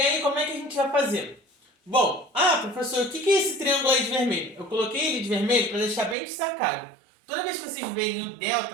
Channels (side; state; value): left; drops out; at 6.2 s